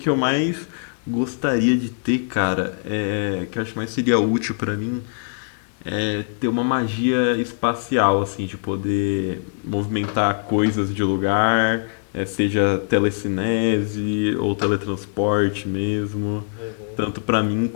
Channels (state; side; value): silent; right; 64 dB below the other